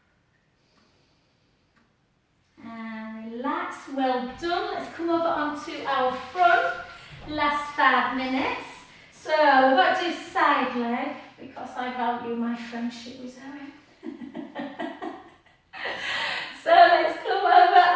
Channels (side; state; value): both; identical; correlation 1.00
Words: And relax, well done. Let's come over onto our front. Last 5 minutes. So we've got to do side leg because I value my friendship with Zoe. So let's come over